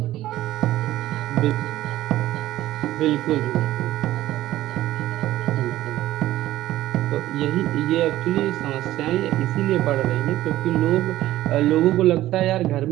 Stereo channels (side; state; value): left; quieter; 14.8 dB